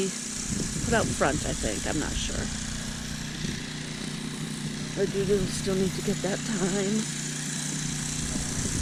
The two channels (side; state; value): both; identical; correlation 1.00